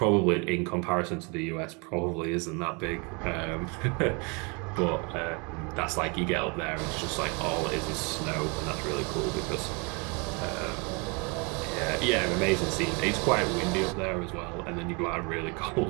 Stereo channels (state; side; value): quieter; left; 31.5 dB